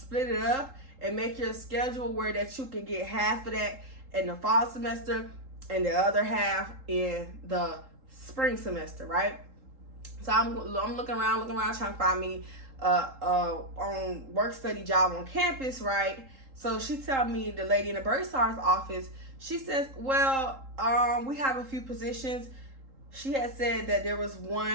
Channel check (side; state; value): left; late; 3.8 ms